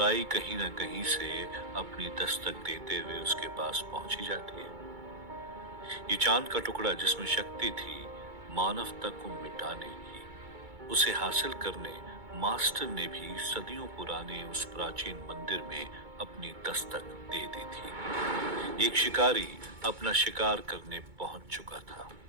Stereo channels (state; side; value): late; left; 2.2 ms